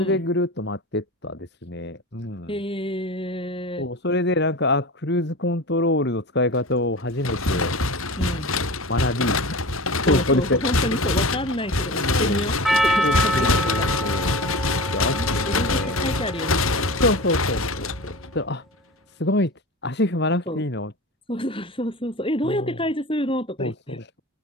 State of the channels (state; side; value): normal; both; correlation 0.32